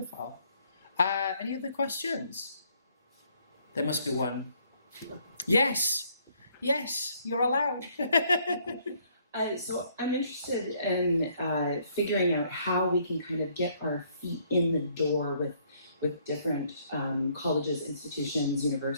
Any other questions? There must be one. Yes, you're allowed. So I'm interested in figuring out how we can kind of get our feet in the door with different colleges, institutions,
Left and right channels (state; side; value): inverted; both; correlation -0.66